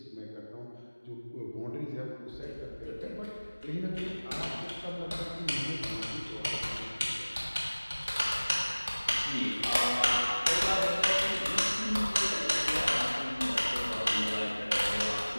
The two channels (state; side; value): inverted; both; correlation -1.00